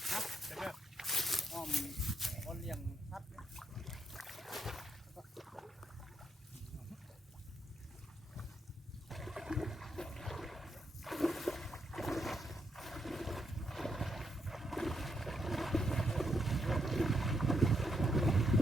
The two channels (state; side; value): normal; both; correlation 0.78